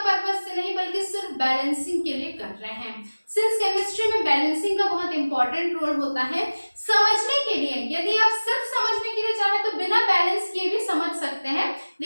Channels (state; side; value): inverted; both; correlation -1.00